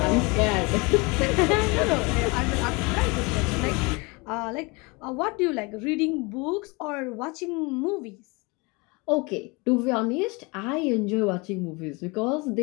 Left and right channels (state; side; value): quieter; right; 27.3 dB